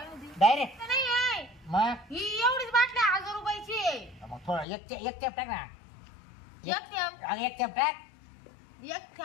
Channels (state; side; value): drops out; right; at 4.7 s